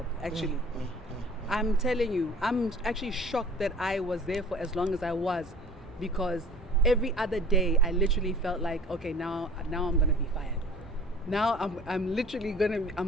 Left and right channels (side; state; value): both; normal; correlation 0.45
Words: actually. I'm telling you, I'm actually shocked that I was there for as long as I was, because every other day I literally felt like, okay, now I'm gonna be fired. Now I'm literally